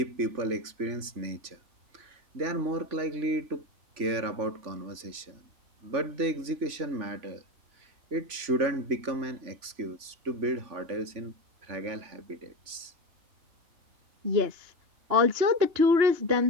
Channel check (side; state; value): left; late; 3.5 ms